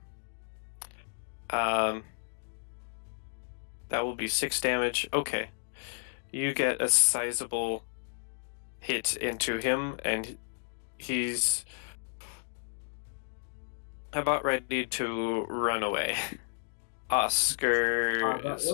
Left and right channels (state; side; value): silent; right; digital silence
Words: That will be 6 damage. Okay. You get a sizable hit into him, and he's about ready to run away. Oscar That is